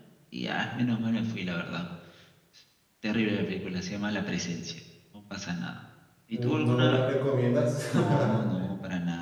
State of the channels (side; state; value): both; identical; correlation 1.00